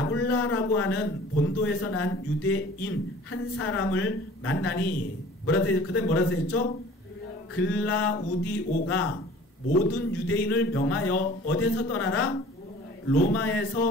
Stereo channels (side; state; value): both; normal; correlation 0.47